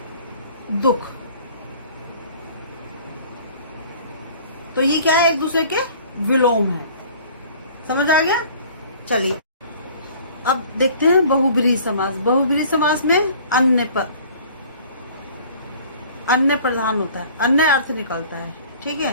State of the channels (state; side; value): inverted; both; correlation -0.50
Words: दुख, तो ये क्या है, एक दूसरे के विलोम है। समझ आ गया। चलिए अब देखते हैं बहुब्रीहि समास। बहुब्रीहि समास में अन्य प्रधान होता है, अन्य अर्थ निकलता है। ठीक